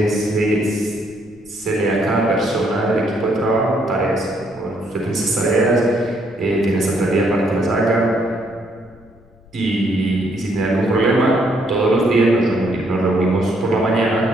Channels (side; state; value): left; noise; rumble, 27 dB below the sound